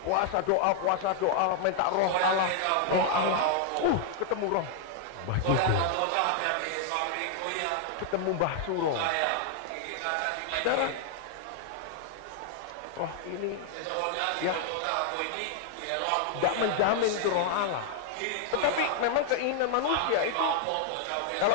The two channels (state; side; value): different; both; correlation 0.00